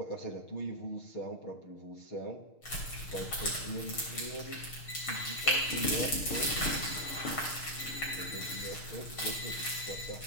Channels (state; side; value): late; right; 6.6 ms